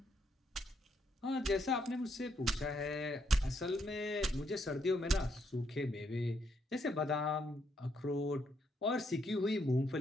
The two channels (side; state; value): both; normal; correlation 0.75